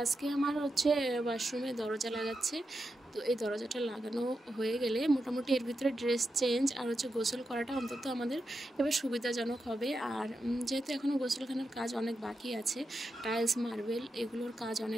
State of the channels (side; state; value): both; normal; correlation 0.88